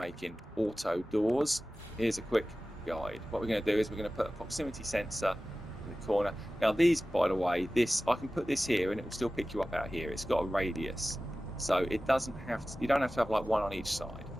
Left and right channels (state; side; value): normal; both; correlation 0.96